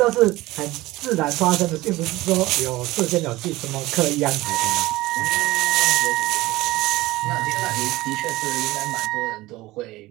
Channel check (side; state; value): left; quieter; 18.8 dB